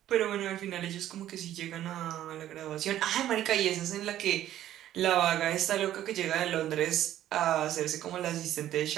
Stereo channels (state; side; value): quieter; left; 12.4 dB